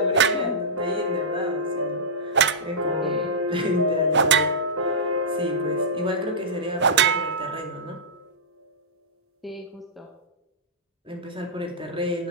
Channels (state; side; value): normal; both; correlation -0.15